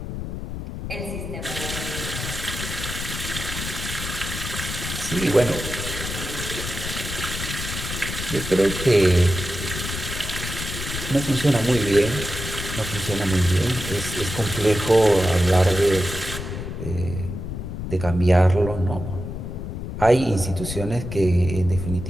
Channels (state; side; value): noise; left; rumble, 6 dB below the sound